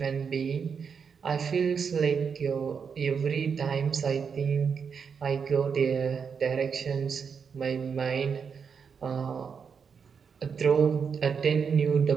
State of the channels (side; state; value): left; quieter; 6.3 dB